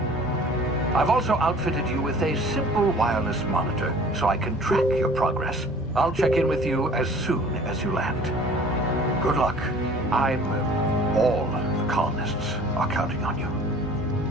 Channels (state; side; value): normal; both; correlation 0.48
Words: I've also outfitted you with a simple wireless monitor, so I can track your progress. I'll check in with you as soon as you land. Good luck. All the colonists are counting on you.